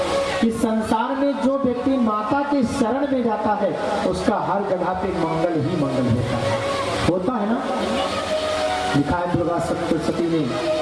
कि संसार में जो व्यक्ति माता के शरण में जाता है उसका हर जगह पे मंगल ही मंगल होता है ना। लिखा है दुर्गा सप्तशती में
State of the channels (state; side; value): identical; both; correlation 1.00